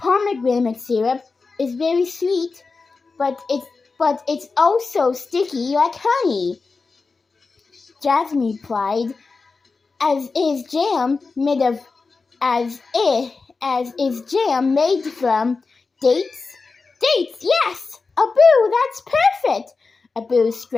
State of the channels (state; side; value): quieter; right; 4.3 dB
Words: syrup is very sweet, but it's also sticky like honey, Jasmine replied. As is jam made from dates? Dates, yes! Abu, that's perfect! Abu